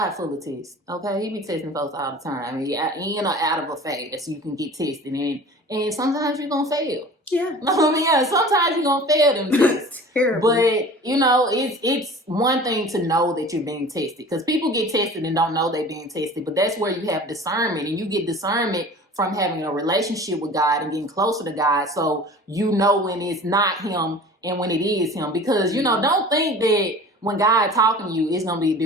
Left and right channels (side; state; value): both; normal; correlation 0.42